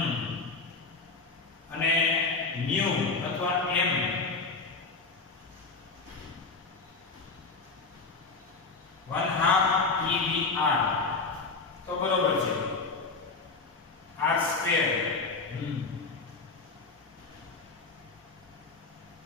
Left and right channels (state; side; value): quieter; right; 4.1 dB